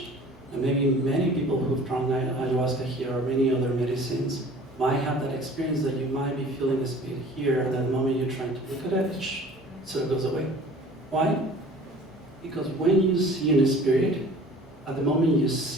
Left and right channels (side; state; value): left; noise; hum, 27 dB below the sound